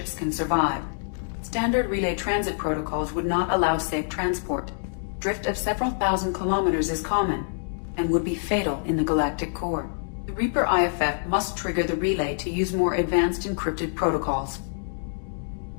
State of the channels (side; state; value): right; silent; digital silence